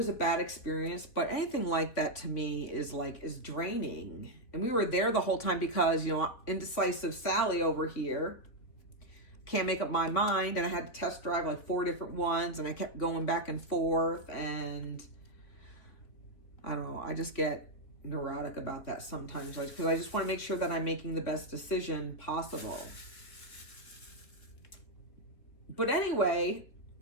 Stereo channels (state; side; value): late; right; 3.5 ms